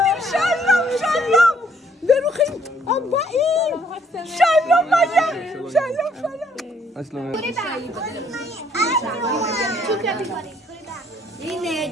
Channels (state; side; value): normal; both; correlation 0.65